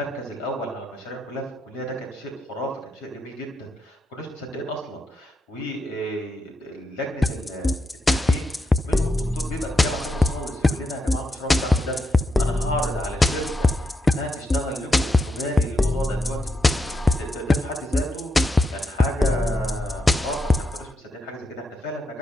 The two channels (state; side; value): normal; both; correlation 0.83